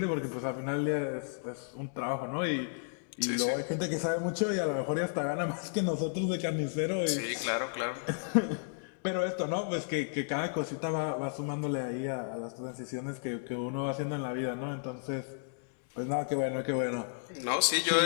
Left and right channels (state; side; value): silent; right; digital silence